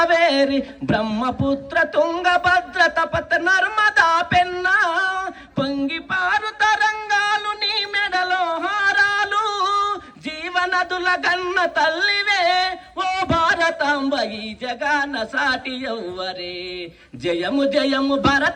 బ్రహ్మపుత్ర తుంగభద్ర తపత నర్మదా పెన్నా పొంగి పారు తరంగాలు నీ మెడలో హారాలు జీవనదుల గన్న తల్లివే ఓ భారతాంబ ఈ జగాన సాటి ఎవ్వరే జయము జయము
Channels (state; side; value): identical; both; correlation 1.00